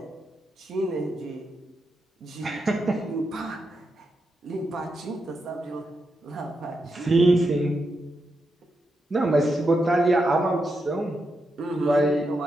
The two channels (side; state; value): both; normal; correlation 0.85